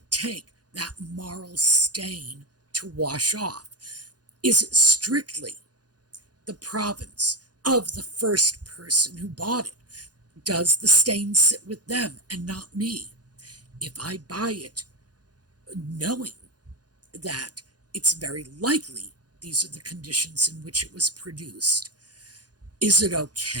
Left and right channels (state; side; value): late; left; 0.69 ms